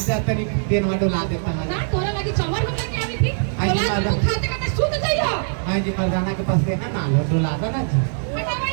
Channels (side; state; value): left; silent; digital silence